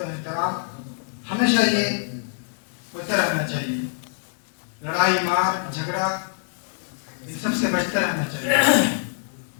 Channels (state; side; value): silent; right; digital silence